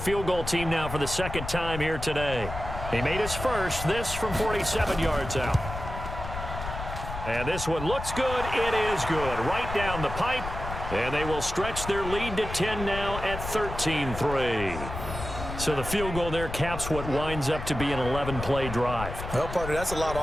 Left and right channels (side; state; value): left; noise; rumble, 8 dB below the sound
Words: goal team now for the 2nd time here today. He made his first, this from 47 yards out. And this one looks good. It is good. Right down the pipe. And they will stretch their lead to 10 now at 13-3. So the field goal there caps what winds up to be an 11-play drive. Well, partner, that's a lot